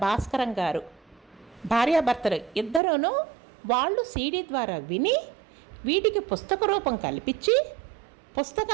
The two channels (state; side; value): drops out; left; at 2.8 s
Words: భాస్కరం గారు భార్యాభర్తలు ఇద్దరూను వాళ్ళు సీడీ ద్వారా విని వీటికి పుస్తక రూపం కల్పించి